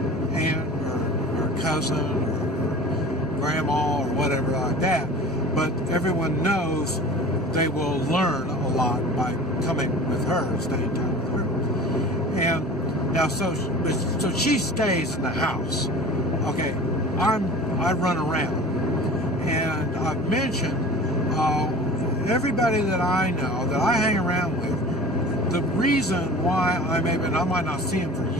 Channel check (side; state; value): both; normal; correlation 0.40